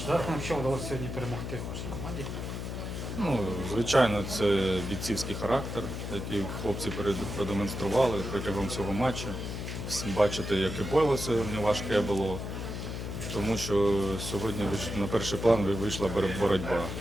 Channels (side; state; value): left; noise; hum, 5 dB below the sound